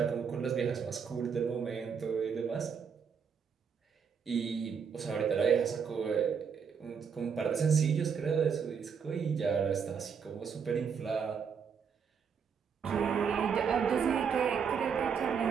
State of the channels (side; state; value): left; quieter; 6.6 dB